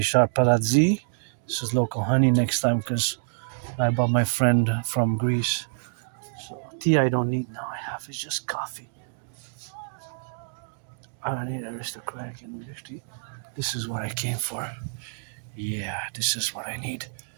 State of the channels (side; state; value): left; silent; digital silence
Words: Palazzi. This is local honey next time because I bought my friend from Greece. So tea I don't need now. I have it's just coffee. I don't need aristocratic English tea. This is what I came for. Yeah, this is what I need.